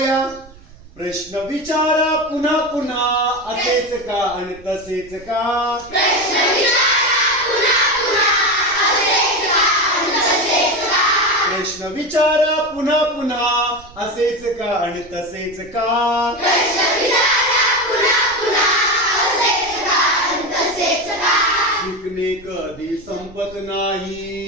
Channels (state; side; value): noise; right; rumble, 22 dB below the sound